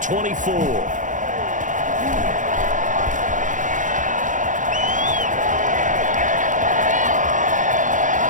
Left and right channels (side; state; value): left; late; 0.37 ms